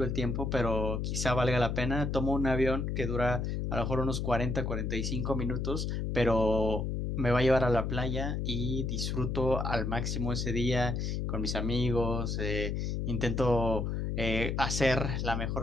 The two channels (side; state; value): left; noise; hum, 1 dB below the sound